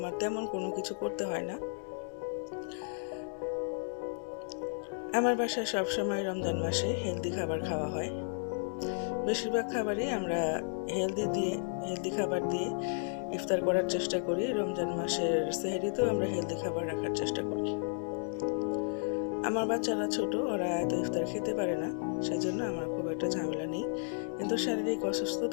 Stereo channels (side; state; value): right; silent; digital silence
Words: তেমন কোনো কিছু করতে হয় না। আমার বাসায় সবসময় রমজান মাসে হেলদি খাবার খাওয়া হয়। বেশিরভাগ খাবারই আমরা হেলদি খাবার দিয়ে ইফতার করার চেষ্টা করি। রমজান মাসের সেহরিতেও আমরা হেলদি খাবার রাখার চেষ্টা করি। আমার বাচ্চারা ছোট, ওরা এত ইফতার খেতে পারে না, সেজন্য আমার খুব একটা ঝামেলা নেই। কিন্তু শারীরিক